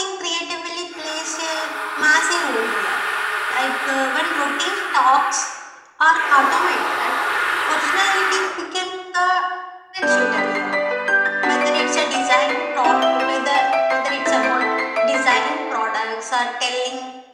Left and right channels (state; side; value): identical; both; correlation 1.00